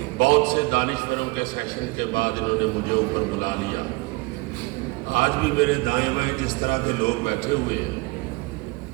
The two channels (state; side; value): quieter; left; 24.8 dB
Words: بہت سے دانشوروں کے سیشن کے بعد انہوں نے مجھے اوپر بلا لیا۔ آج بھی میرے دائیں بائیں جس طرح کے لوگ بیٹھے ہوئے ہیں،